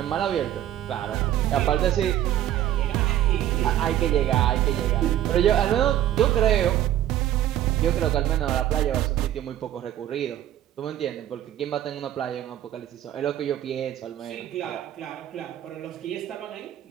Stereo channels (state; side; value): quieter; left; 12.2 dB